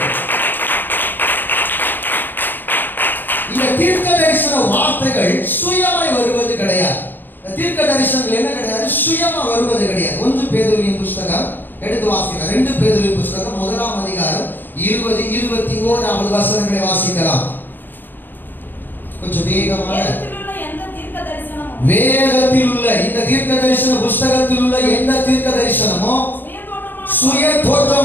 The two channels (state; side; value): late; right; 0.093 ms